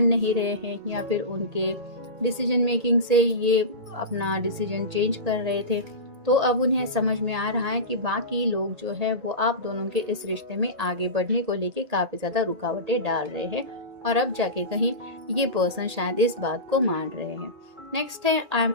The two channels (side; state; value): left; late; 1.8 ms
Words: नहीं रहे हैं, या फिर उनके डिसीजन मेकिंग से ये अपना डिसीजन चेंज कर रहे थे। तो अब उन्हें समझ में आ रहा है कि बाकी लोग जो है वो आप दोनों के इस रिश्ते में आगे बढ़ने को लेके काफी ज्यादा रुकावटें डाल रहे हैं, और अब जाके कहीं ये पर्सन शायद इस बात को मान रहे हैं। नेक्स्ट है I am